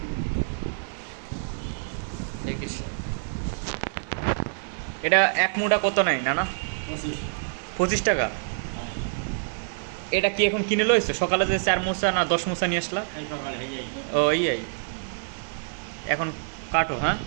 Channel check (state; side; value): silent; left; digital silence